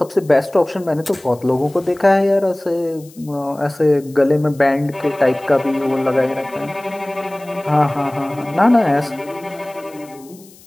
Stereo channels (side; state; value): left; noise; hiss, 25 dB below the sound